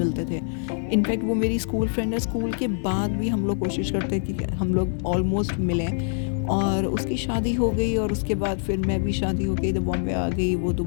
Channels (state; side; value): silent; right; 62 dB below the other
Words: थे। इनफैक्ट वो मेरी स्कूल फ्रेंड है, स्कूल के बाद भी हम लोग कोशिश करते हैं कि हम लोग ऑलमोस्ट मिलें। और उसकी शादी हो गई, और उसके बाद फिर मैं भी शादी हो गई तो बॉम्बे आ गई, वो